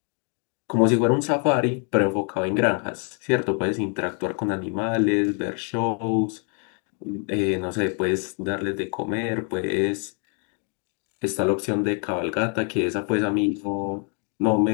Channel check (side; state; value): right; quieter; 40.0 dB